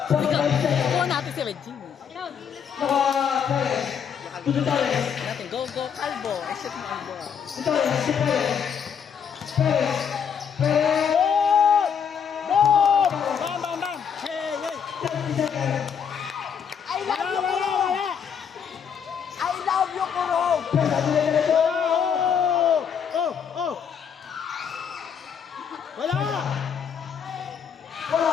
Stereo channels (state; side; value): quieter; right; 7.4 dB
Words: kuha natin si Regine. Yakal to the Torres. Natin, go, Calvo. I-shoot mo ang ball. To Torres, si Perez. Perez. Perez. Boom! Bam, bam, bam! Hey, hey! 30 seconds. I love you, Kurong! I love you, Kurong! Perez, at the end of the Oh! Oh! Oh! Wala! Wala.